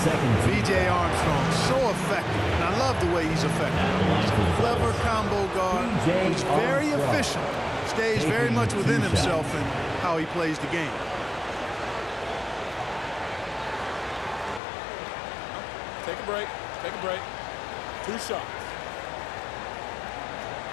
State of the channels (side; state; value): right; drops out; at 14.6 s